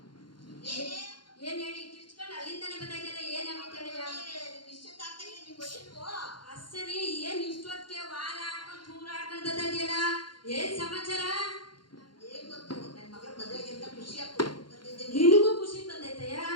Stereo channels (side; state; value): right; late; 0.72 ms